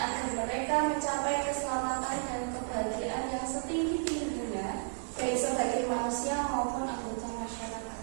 agar mereka mencapai keselamatan dan kebahagiaan yang setinggi-tingginya, baik sebagai manusia maupun anggota masyarakat.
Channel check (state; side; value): silent; left; digital silence